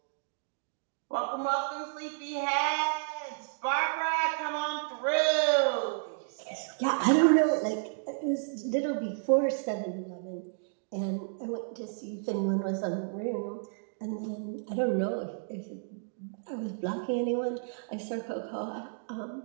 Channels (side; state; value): left; silent; digital silence